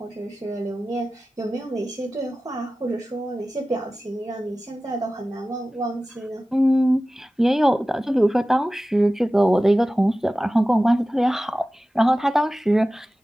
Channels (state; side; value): normal; both; correlation 0.96